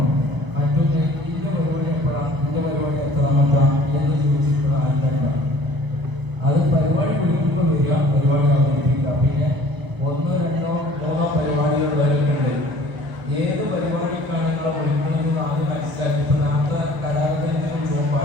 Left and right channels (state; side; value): late; left; 1.0 ms